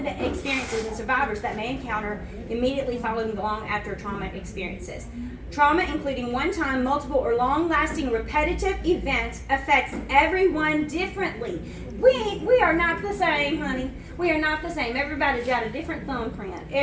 experiences and survivors that may encounter immediately following long after trauma experiences. Trauma, including one-time, multiple, or long-lasting repetitive events, affects everyone differently. We are not the same, honey. We are not the same. Everybody's got a different thumbprint.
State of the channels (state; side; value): identical; both; correlation 1.00